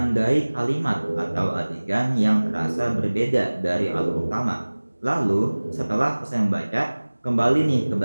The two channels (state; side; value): inverted; both; correlation -1.00